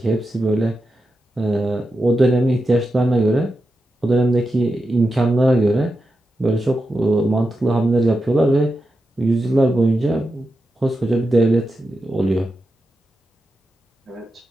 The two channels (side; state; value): both; normal; correlation 0.89